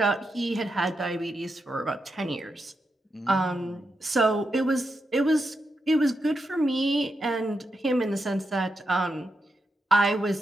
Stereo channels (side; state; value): both; normal; correlation 0.86